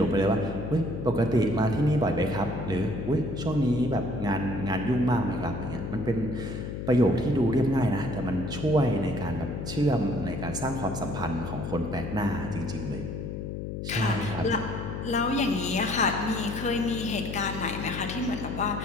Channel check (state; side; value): noise; left; hum, 6 dB below the sound